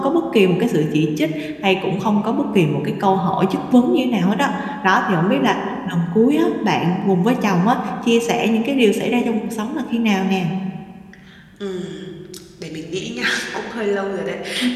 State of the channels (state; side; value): identical; both; correlation 1.00